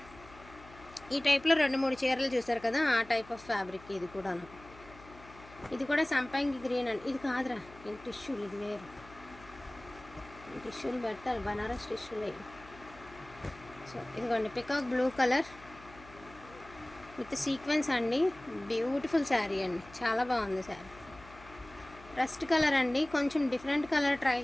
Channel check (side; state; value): left; noise; hum, 21 dB below the sound